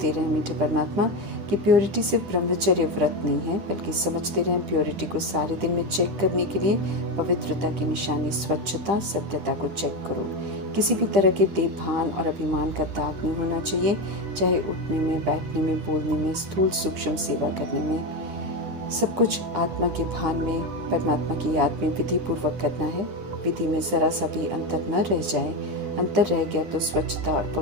रहें मीठे परमात्मा कि प्योरिटी सिर्फ ब्रह्मचर्य व्रत नहीं है, बल्कि समझते रहें प्योरिटी को सारे दिन में चेक करने के लिए पवित्रता की निशानी स्वच्छता, सत्यता को चेक करो। किसी भी तरह के देभान और अभिमान का दाग नहीं होना चाहिए, चाहे उठने में, बैठने में, बोलने में, स्थूल सूक्ष्म सेवा करने में। सब कुछ आत्मा के भान में, परमात्मा की याद में विधि पूर्वक करना है। विधि में जरा सा भी अंतर न रह जाए। अंतर रह गया तो स्वच्छता और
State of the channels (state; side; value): late; left; 10 ms